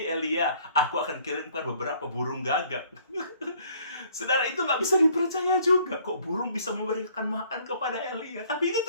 Elia, aku akan kirimkan beberapa burung gagak." Saudara, itu nggak bisa dipercaya juga. Kok burung bisa memberikan makan kepada Elia? Tapi itu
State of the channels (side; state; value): both; inverted; correlation -0.60